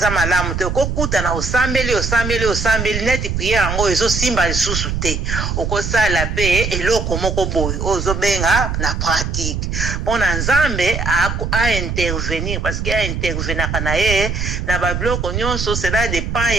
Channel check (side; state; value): right; noise; rumble, 2 dB below the sound